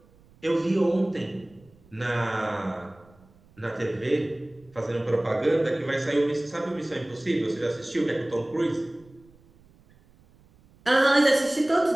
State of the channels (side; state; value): right; noise; rumble, 28 dB below the sound